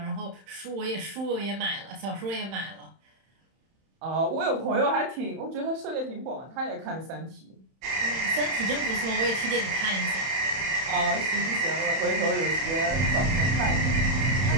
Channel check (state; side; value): late; left; 31 ms